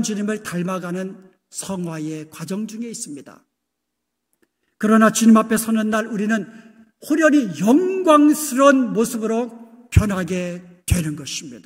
주님을 닮아가는 성화의 과정 중에 있습니다. 그러나 주님 앞에 서는 날 우리는 호련히 영광스러운 모습으로 변하게 되는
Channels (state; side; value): identical; both; correlation 1.00